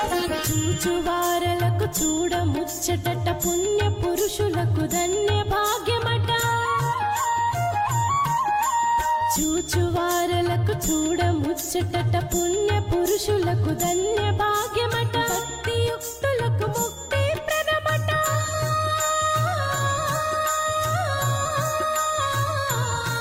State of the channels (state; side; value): identical; both; correlation 1.00